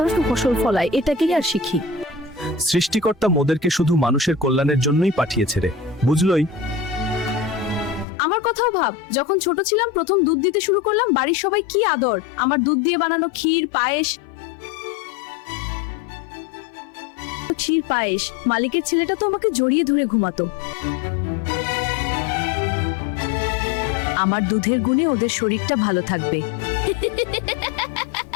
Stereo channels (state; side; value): drops out; right; at 8.1 s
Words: ফসল ফলায়, এটাকেই আর শিখি। সৃষ্টিকর্তা মোদেরকে শুধু মানুষের কল্যাণের জন্যই পাঠিয়েছে রে, বুঝলই? আমার কথাও ভাব, যখন ছোট ছিলাম প্রথম দুধ দিতে শুরু করলাম, বাড়ির সবাই কি আদর। আমার দুধ দিয়ে বানানো ক্ষীর পায়েস, মালিকের ছেলেটা তো আমাকে জড়িয়ে ধরে ঘুমাতো। আমার দুধের গুণে ওদের শরীরটা ভালো থাকবে।